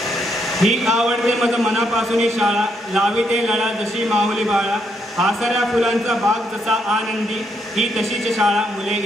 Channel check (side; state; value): both; normal; correlation 0.76